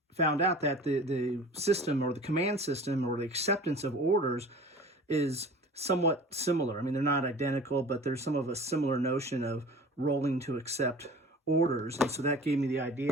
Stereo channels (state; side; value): normal; both; correlation 0.42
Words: found out that the system or the command system or the acceptance of orders is somewhat similar. I mean, they're not identical, but there's some of a similar notion of rolling to accept orders. And so that gave me the